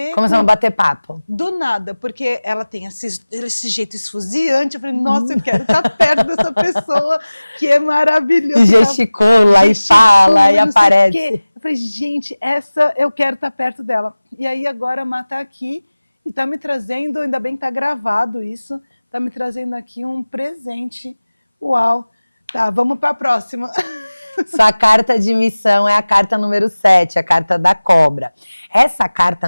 Começamos a bater papo. Do nada, porque ela tem esse jeito esfuziante, eu falei, nossa, eu quero estar perto dessa pessoa, que é maravilhosa. E gesticula, e fala, e aparece. Eu falei, gente, essa eu quero estar perto dela. E aí agora a Má tá aqui, e tá me trazendo, ainda bem que tá gravado isso, tá me trazendo aqui um presente. Uau! Tá, vamos para a próxima. Sua carta de missão é a carta número 7, a carta da cobra. Essa carta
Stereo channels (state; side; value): inverted; both; correlation -0.99